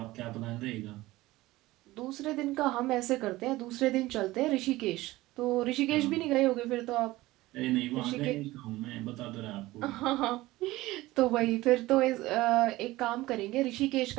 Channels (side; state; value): left; quieter; 18.3 dB